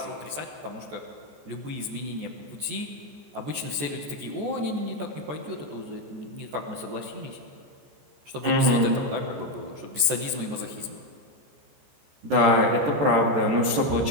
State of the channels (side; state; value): left; late; 14 ms